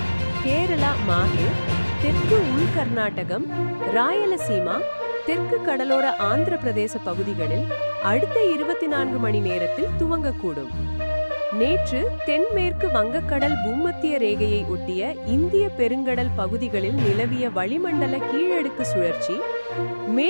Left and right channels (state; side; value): inverted; both; correlation -1.00